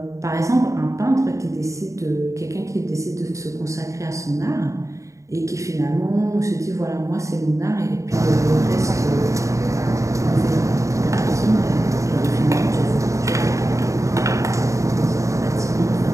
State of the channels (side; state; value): left; late; 0.15 ms